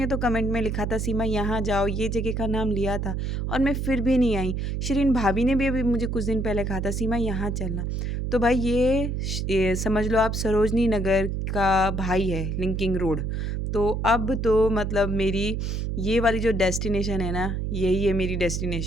तो कमेंट में लिखा था सीमा यहाँ जाओ, ये जगह का नाम लिया था और मैं फिर भी नहीं आई। शिरीन भाभी ने भी अभी मुझे कुछ दिन पहले कहा था सीमा यहाँ चलना। तो भाई ये समझ लो आप सरोजनी नगर का भाई है लिंकिंग रोड। तो अब तो मतलब मेरी ये वाली जो डेस्टिनेशन है ना, यही है मेरी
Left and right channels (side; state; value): right; noise; hum, 2 dB below the sound